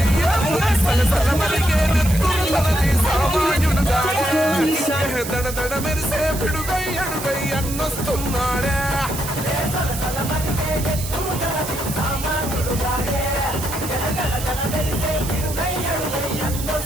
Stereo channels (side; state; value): right; noise; hiss, 9 dB below the sound